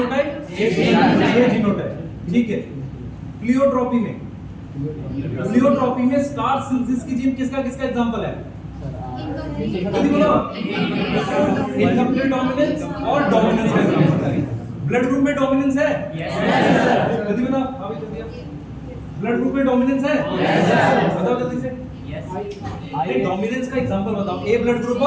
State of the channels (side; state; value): both; identical; correlation 1.00